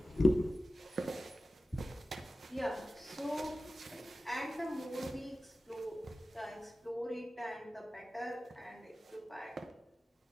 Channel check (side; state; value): both; normal; correlation 0.95